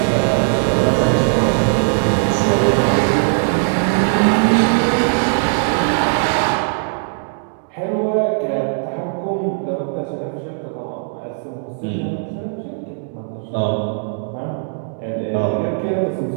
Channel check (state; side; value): silent; left; digital silence